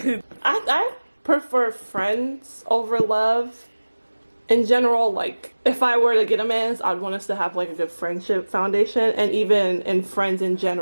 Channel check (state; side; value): inverted; both; correlation -1.00